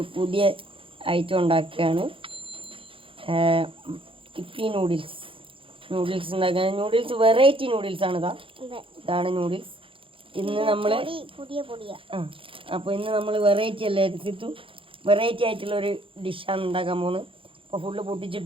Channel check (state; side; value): late; left; 0.25 ms